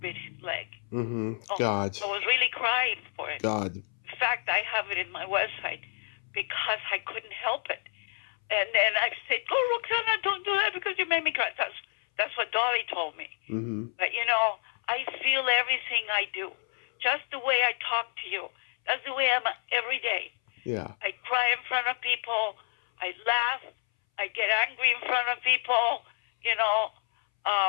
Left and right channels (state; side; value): silent; right; 59 dB below the other